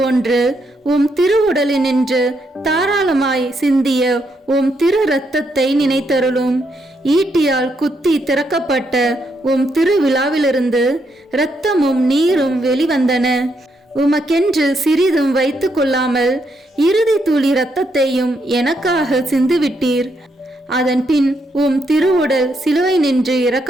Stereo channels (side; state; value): both; normal; correlation 0.78